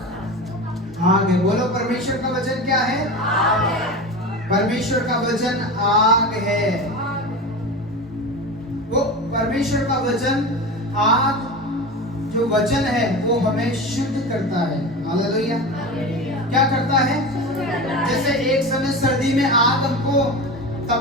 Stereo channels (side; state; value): both; normal; correlation 0.27